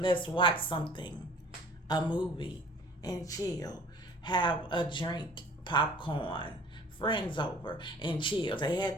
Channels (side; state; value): both; normal; correlation 0.49